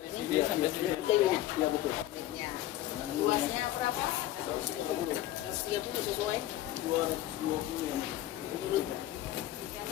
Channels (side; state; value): right; quieter; 14.2 dB